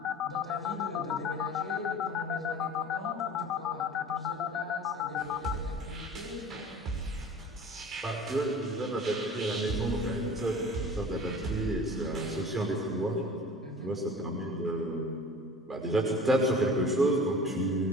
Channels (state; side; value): normal; both; correlation 0.42